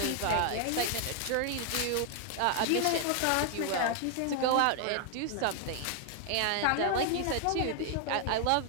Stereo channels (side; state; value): both; different; correlation 0.00